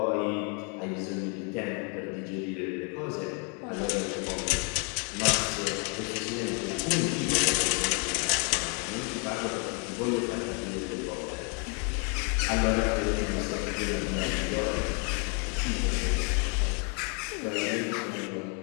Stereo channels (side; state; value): right; quieter; 37.5 dB